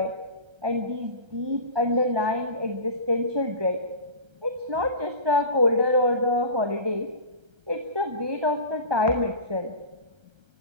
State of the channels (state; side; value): late; left; 1.3 ms